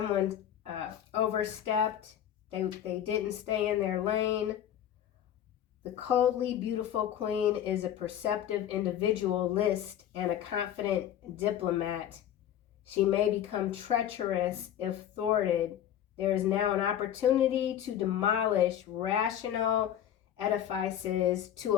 overstepped. They didn't stay in their lane. The coldly beautiful queen is a perceptive individualist and a confident diplomat. She may become treacherous if thwarted. There is now an opportunity to demolish rational edifices, to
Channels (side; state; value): right; quieter; 10.6 dB